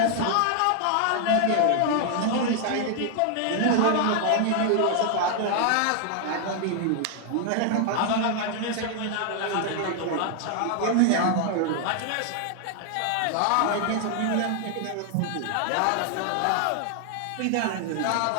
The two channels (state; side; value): different; both; correlation 0.00